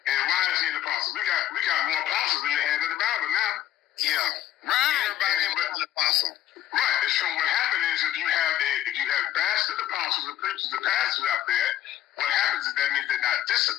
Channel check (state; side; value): quieter; right; 12.3 dB